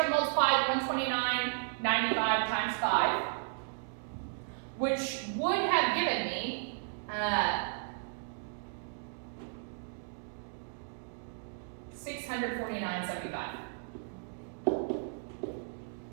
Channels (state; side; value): silent; left; digital silence